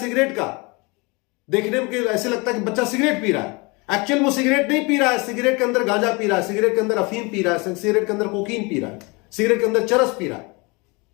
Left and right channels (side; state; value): right; quieter; 27.7 dB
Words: का, देखने में ऐसे लगता है कि बच्चा सिगरेट पी रहा है, एक्चुअल में सिगरेट नहीं पी रहा है, सिगरेट के अंदर गांजा पी रहा है, सिगरेट के अंदर अफीम पी रहा है, सिगरेट के अंदर कोकीन पी रहा है, सिगरेट के अंदर चरस पी रहा है,